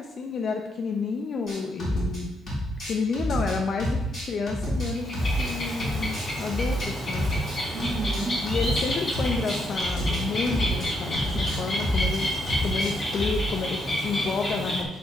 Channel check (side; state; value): both; normal; correlation 0.77